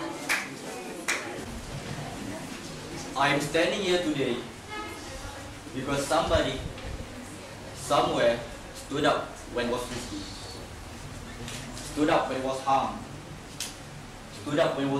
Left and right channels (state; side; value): identical; both; correlation 1.00